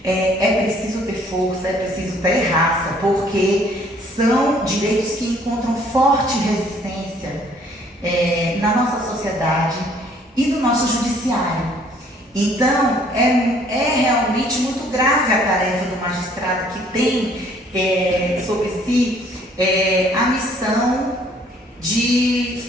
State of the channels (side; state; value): both; normal; correlation 0.60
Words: é preciso ter força, é preciso ter raça, porque são direitos que encontram forte resistência na nossa sociedade e no nosso judiciário. Então, é realmente muito grave a tarefa do magistrado que tem sobre si a missão de